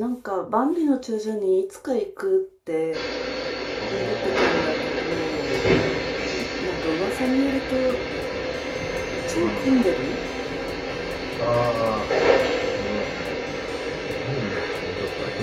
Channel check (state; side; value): identical; both; correlation 1.00